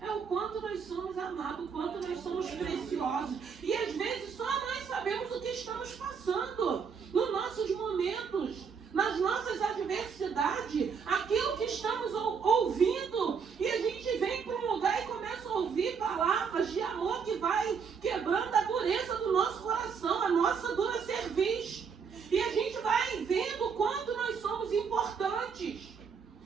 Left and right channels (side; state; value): left; quieter; 6.2 dB